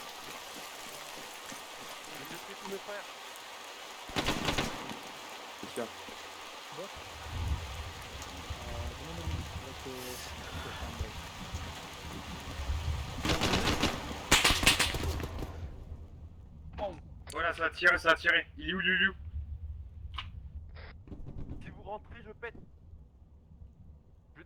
C'est sûr. Voilà, ça a tiré. Il est où? Si vous rentrez, je pète. Je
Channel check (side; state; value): both; identical; correlation 1.00